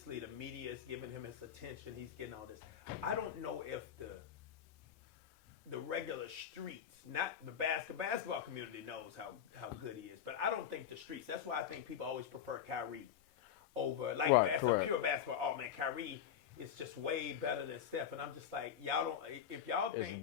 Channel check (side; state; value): right; quieter; 8.9 dB